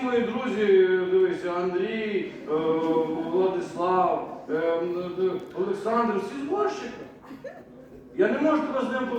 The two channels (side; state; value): both; identical; correlation 1.00